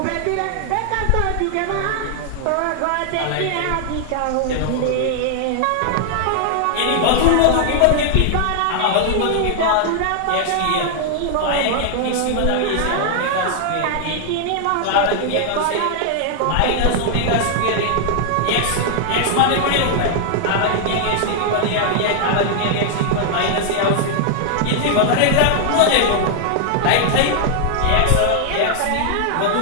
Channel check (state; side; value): different; both; correlation 0.00